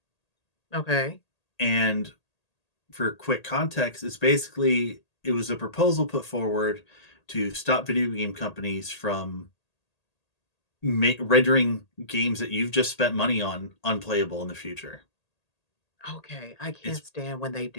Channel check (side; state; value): right; late; 1.8 ms